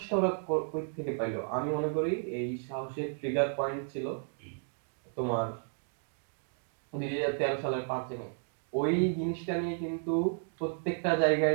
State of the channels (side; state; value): left; silent; 56 dB below the other